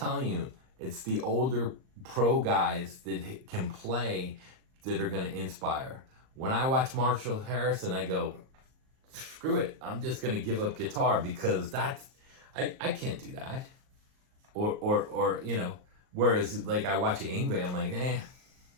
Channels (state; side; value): late; left; 38 ms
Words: you, it's the older pro guys that can play that are going to inspire. When I watch Marshall Harrison, I go, screw it. I'm just going to give up guitar, because I can't do that. Or you know, whereas like I watch Yngwie, I'm like,